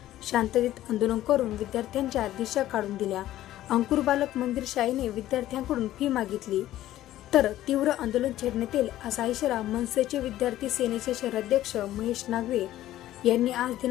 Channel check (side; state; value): right; quieter; 13.9 dB